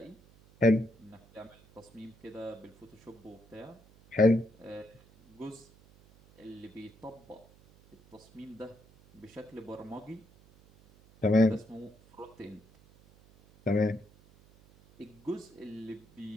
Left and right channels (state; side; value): noise; right; hum, 26 dB below the sound